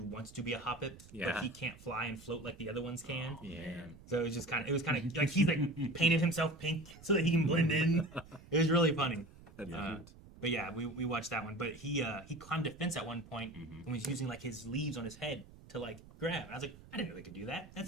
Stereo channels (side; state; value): right; noise; rumble, 20 dB below the sound